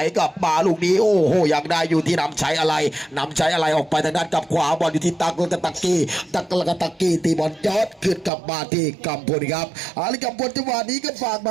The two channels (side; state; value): left; drops out; at 8.3 s